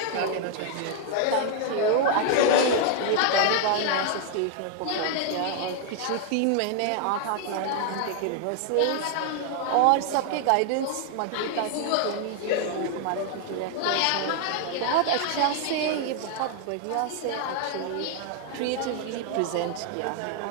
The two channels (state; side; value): different; both; correlation 0.00